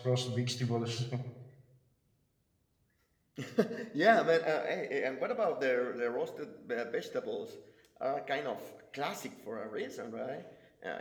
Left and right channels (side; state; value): both; identical; correlation 1.00